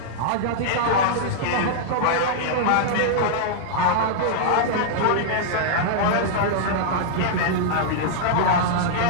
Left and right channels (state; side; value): different; both; correlation -0.01